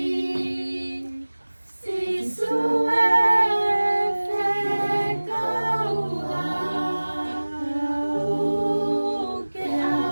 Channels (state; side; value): inverted; both; correlation -1.00